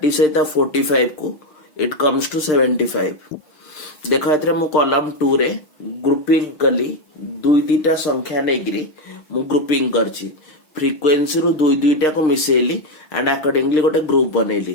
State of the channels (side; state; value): right; late; 6.6 ms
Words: सहित 45 को इट कम्स टू 75 देखो एतरे मु कॉलम 2 रे ग्रुपिंग कली दुई दीटा संख्या नेग्री मु ग्रुपिंग करछि फ्रीक्वेंसी रो दुई दुईटा को मिसेली एंड अकॉर्डिंगली गोटे ग्रुप